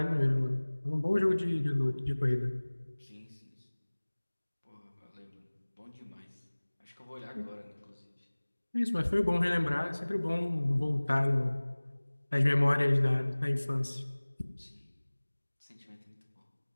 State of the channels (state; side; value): inverted; both; correlation -1.00